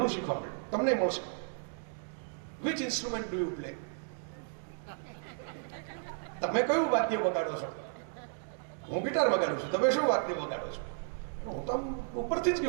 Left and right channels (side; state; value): left; silent; digital silence